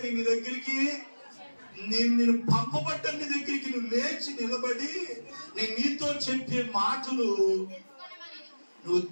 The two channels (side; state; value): both; inverted; correlation -1.00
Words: నీ దగ్గరికి నేను పంపబడ్డ నీ దగ్గరికి నువ్వు లేచి నిలబడి నేను నీతో చెప్పే మాటలు నువ్వు